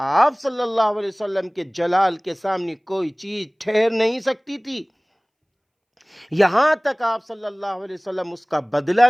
صلی اللہ علیہ وسلم کے جلال کے سامنے کوئی چیز ٹھہر نہیں سکتی تھی، یہاں تک آپ صلی اللہ علیہ وسلم اس کا بدلہ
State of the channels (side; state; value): both; identical; correlation 1.00